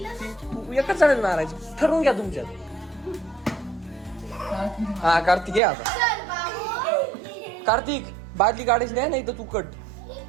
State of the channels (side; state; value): left; drops out; at 5.6 s